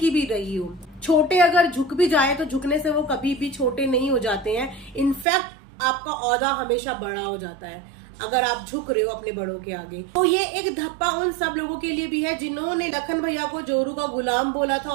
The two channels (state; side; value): drops out; left; at 5.2 s